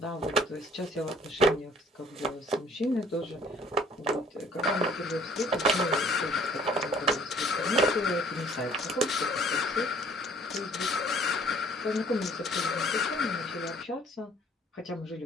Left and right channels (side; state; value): both; normal; correlation 0.56